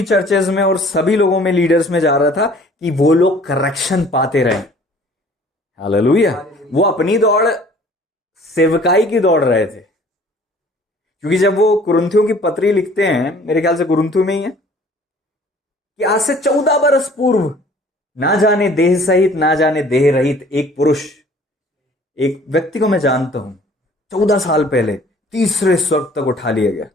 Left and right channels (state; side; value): normal; both; correlation 0.53